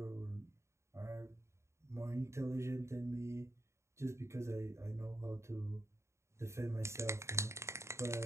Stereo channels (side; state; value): left; late; 0.14 ms